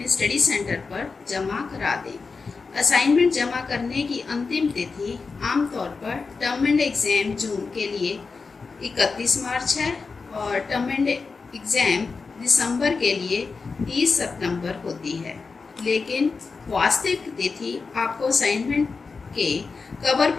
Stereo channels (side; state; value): right; quieter; 4.6 dB